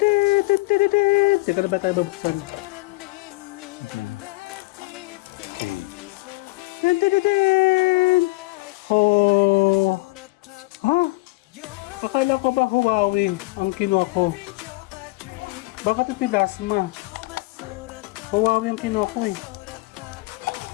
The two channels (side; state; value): right; quieter; 23.0 dB